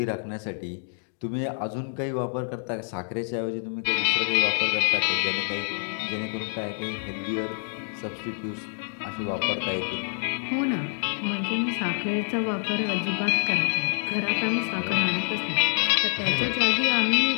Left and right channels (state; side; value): silent; right; digital silence